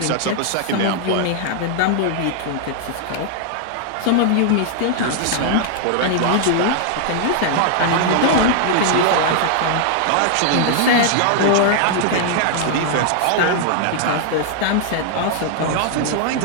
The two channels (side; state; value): both; different; correlation -0.01